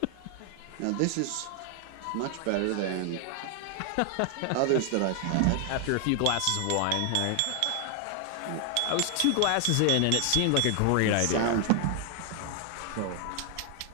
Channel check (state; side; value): different; both; correlation 0.00